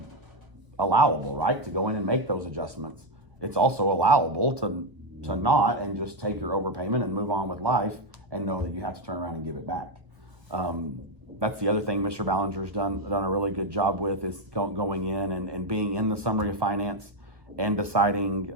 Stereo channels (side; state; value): left; late; 1.1 ms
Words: allowable, right? To go in and make those adjustments. It's also allowable to not, and just take your overpayment and move on with life, and know that you have to turn around and give it back. That's the other thing Mr. Ballinger's done a really good job with, is going in and being in the summary of finance and deciding